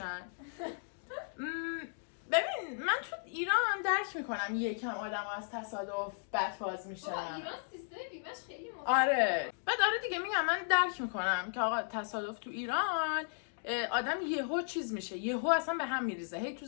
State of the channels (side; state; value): right; silent; digital silence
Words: ببین من تو ایران درک میکنم یکم آدم از تصادف بدفاز میشن. ایران سیستم بیمه‌اش خیلی مهمه. آره بعد آره دیگه میگم من درک میکنم که آقا تصادف تو ایران آدم یهو چیز میشه، یهو اصلا به هم میریزه، هی تو